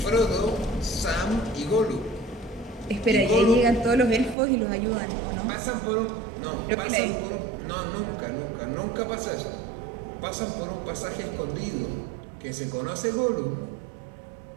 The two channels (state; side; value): drops out; left; at 4.4 s